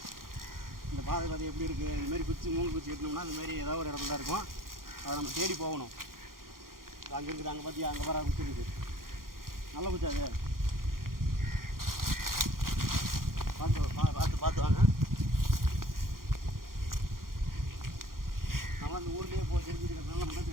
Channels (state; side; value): late; left; 0.91 ms